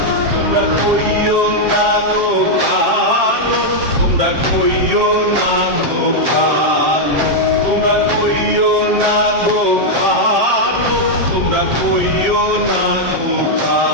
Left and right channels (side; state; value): left; late; 7.6 ms